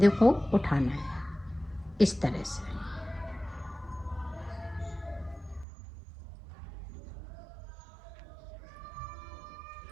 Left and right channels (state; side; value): drops out; left; at 5.7 s